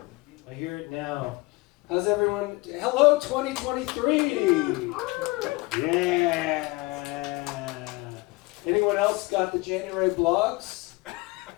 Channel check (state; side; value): quieter; right; 24.0 dB